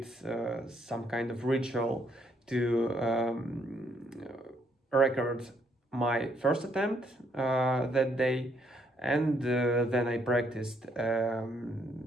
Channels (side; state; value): both; normal; correlation 0.71